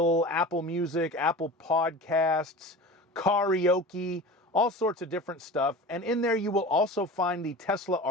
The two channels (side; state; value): both; normal; correlation 0.34